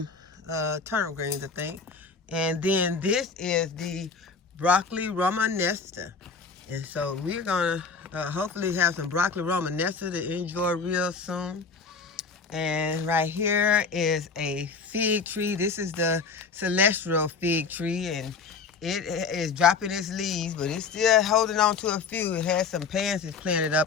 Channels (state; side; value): quieter; right; 5.0 dB